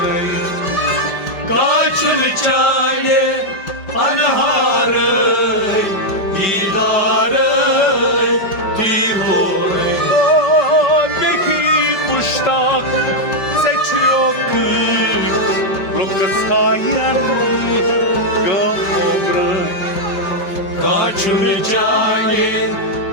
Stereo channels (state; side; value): late; right; 5.1 ms